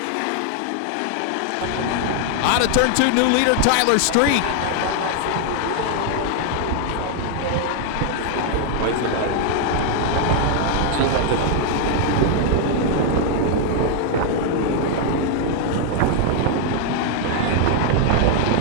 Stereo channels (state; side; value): different; both; correlation 0.00